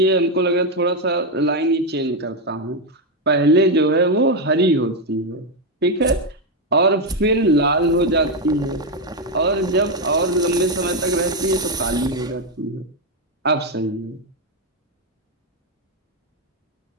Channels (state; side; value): normal; both; correlation 0.05